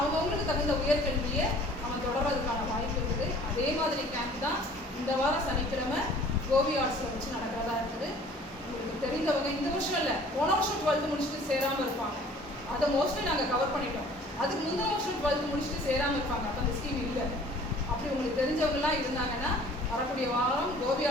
தகுந்த உயர்கல்வியை அவன் தொடர்றதுக்கான வாய்ப்பு இருக்குது. அதே மாதிரி கேம்ப் தான் இந்த வாரம் சனிக்கிழமை கோபி ஆர்ட்ஸில் வச்சு நடக்கிறதா இருக்குது. உங்களுக்கு தெரிந்தவங்க இந்த வருஷம் இல்லை, போன வருஷம் 12th முடிச்சுட்டு சேராமல் இருப்பாங்க. அதை மோஸ்ட்லி நாங்கள் கவர் பண்ணிட்டோம். அதுக்கு முந்தின வருஷம் 12th முடிச்சுட்டு சேராமல் இருப்பாங்க. அப்போ அந்த ஸ்கீம் இல்லை. அப்படி உங்களுக்கு தெரிஞ்சவங்கலாம் இருந்தாங்கன்னா வரக்கூடிய வாரம் கோபி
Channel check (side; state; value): both; normal; correlation 0.51